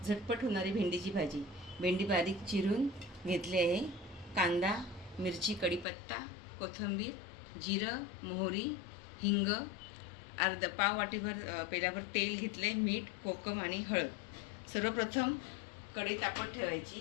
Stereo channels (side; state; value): right; drops out; at 5.9 s